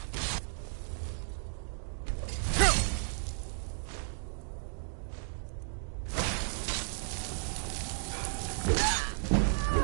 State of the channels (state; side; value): silent; left; digital silence